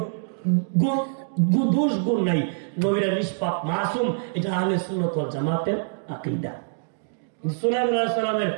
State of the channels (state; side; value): silent; left; digital silence